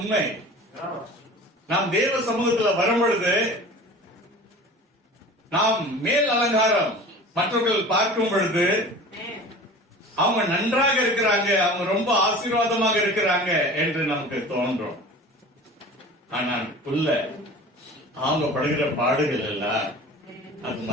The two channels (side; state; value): both; normal; correlation 0.39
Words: நாம் தேவ சமூகத்தில் வரும் பொழுது நாம் மேல் அலங்காரம் மற்றவர்கள் பார்க்கும் பொழுது அவங்க நன்றாக இருக்கிறாங்க, அவங்க ரொம்ப ஆசீர்வாதமாக இருக்கிறாங்க என்று நமக்கு தோன்றும். ஆனால் உள்ள அவங்க படுகிற பாடுகள் எல்லாம் அது